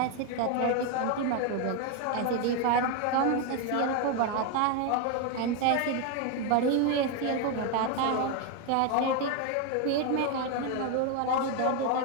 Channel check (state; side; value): different; both; correlation 0.01